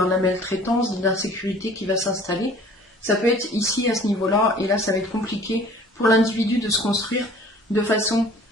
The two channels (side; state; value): both; normal; correlation 0.50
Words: de la maltraitance, de l'insécurité qui va s'installer. Ça peut être ici à ce niveau-là, et là ça va être compliqué pour l'individu de se construire de façon